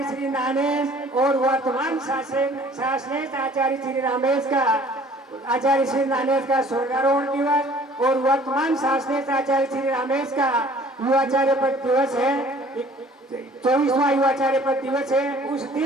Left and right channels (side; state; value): both; normal; correlation 0.52